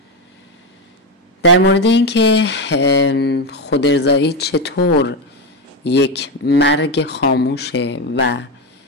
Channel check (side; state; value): both; normal; correlation 0.12